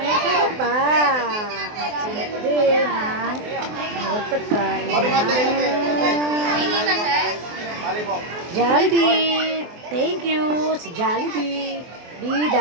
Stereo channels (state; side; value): late; left; 24 ms